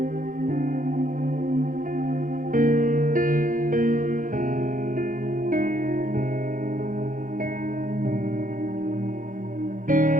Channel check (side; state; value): left; late; 0.39 ms